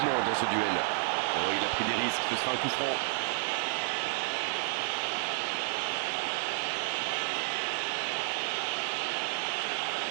dans ce duel. Oh, il a pris des risques, ce sera un coup franc.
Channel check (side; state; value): left; silent; digital silence